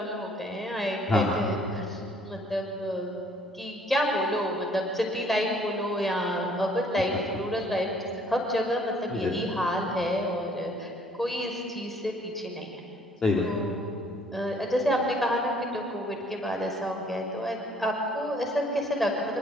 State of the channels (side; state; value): both; normal; correlation 0.60